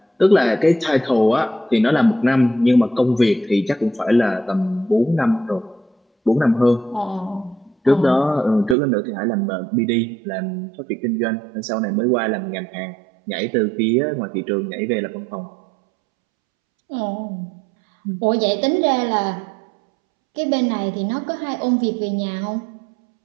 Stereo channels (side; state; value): left; drops out; at 8.8 s